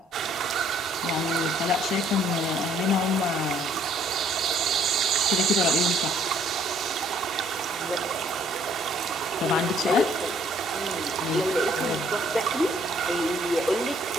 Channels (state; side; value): normal; both; correlation 0.63